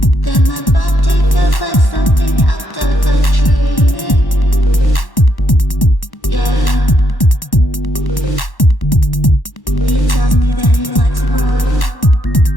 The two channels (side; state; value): right; late; 1.1 ms